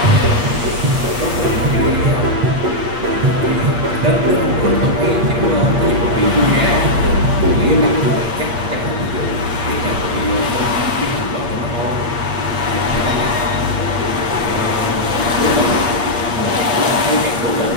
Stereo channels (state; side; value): late; left; 8.5 ms